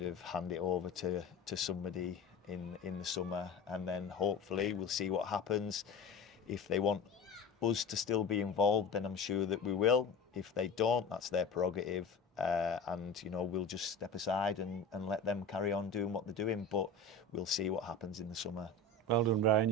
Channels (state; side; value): quieter; right; 3.5 dB